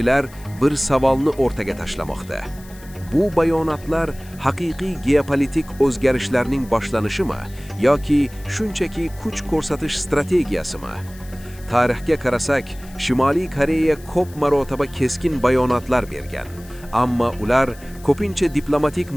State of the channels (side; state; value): left; noise; hiss, 23 dB below the sound